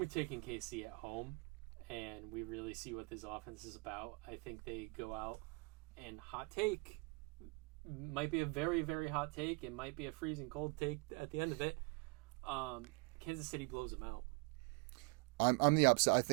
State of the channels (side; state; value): left; quieter; 30.5 dB